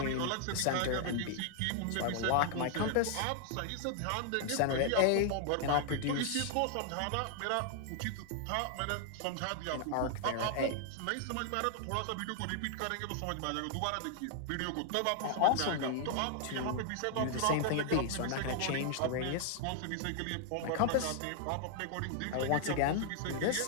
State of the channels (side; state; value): both; different; correlation 0.00